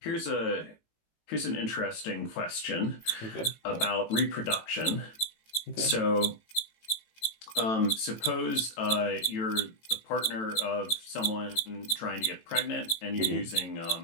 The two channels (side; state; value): right; late; 18 ms